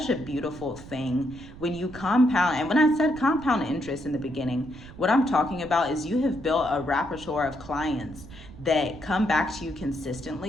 a beautiful thing when you compound. And when I said compound interest in the beginning, what I'm talking about is you have built a repertoire of clients that come back to you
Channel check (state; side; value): noise; right; rumble, 17 dB below the sound